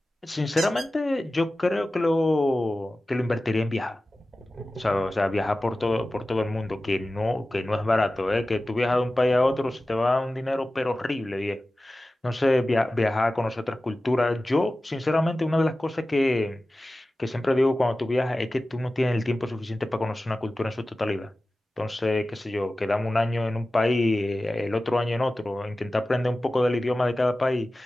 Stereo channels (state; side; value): normal; both; correlation 0.96